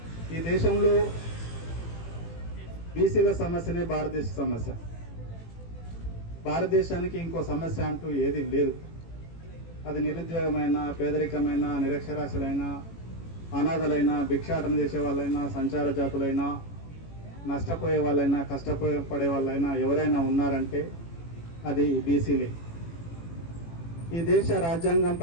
ఈ దేశంలో బీసీల సమస్యనే భారతదేశ సమస్య. భారతదేశానికి ఇంకో సమస్య అంటూ ఏది లేదు. అది నిరుద్యోగమైన, పేదరికమైన, నిరక్షరాస్యులైన, అనాథలైన, భిక్షాటన చేసే వాళ్ళైనా, సంచార జాతులైనా, నష్టపోయే వాళ్ళైనా, కష్టపడే వాళ్ళైనా ఎవరైనా ఉన్నారంటే అది బీసీలే. ఈ దేశ రాజ్యాంగం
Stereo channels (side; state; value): right; late; 18 ms